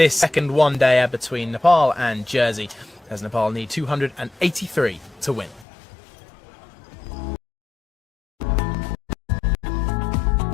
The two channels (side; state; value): right; drops out; at 5.7 s